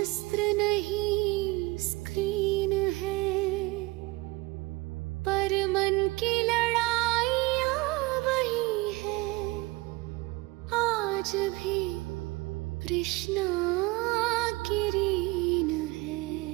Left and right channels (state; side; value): quieter; left; 22.6 dB